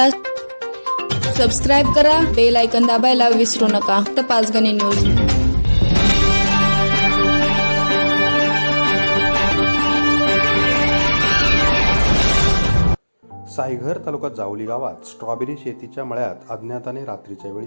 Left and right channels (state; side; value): inverted; both; correlation -1.00